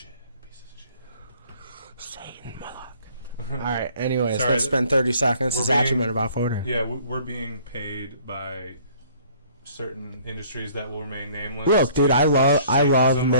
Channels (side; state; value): both; inverted; correlation -0.56